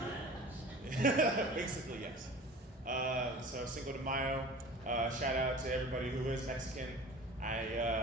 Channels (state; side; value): normal; both; correlation 0.41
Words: Basically, yes. So Cinco de Mayo. Shout out to everybody who is Mexican. I